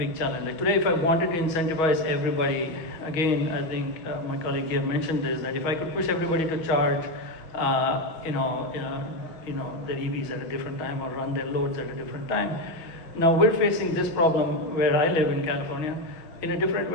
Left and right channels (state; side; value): late; right; 6.2 ms